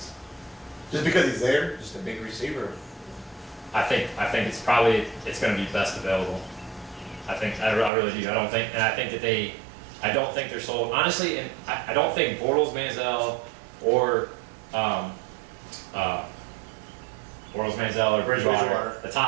Just because he's there? Just a big receiver. I think it's going to be best available. I really do. I don't think they're sold. Honestly, and I don't think Bortles, Manziel, or Bridgewater, the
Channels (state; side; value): drops out; left; at 7.9 s